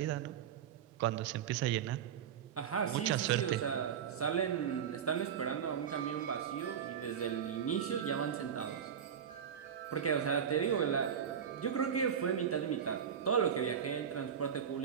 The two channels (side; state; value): left; quieter; 8.2 dB